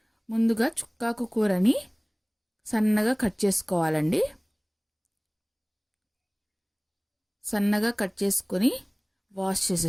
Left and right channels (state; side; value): identical; both; correlation 1.00